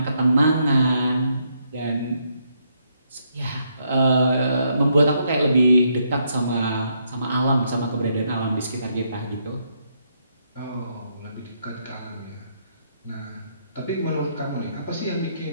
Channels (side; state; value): both; inverted; correlation -0.75